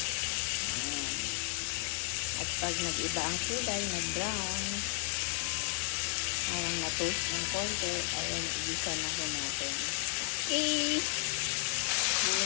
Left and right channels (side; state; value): right; silent; 56 dB below the other